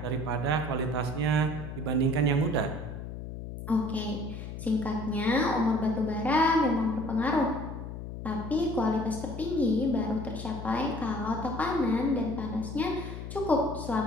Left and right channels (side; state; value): left; noise; hum, 8 dB below the sound